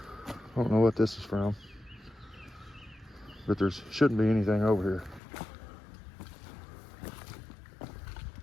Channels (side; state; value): right; drops out; at 5.2 s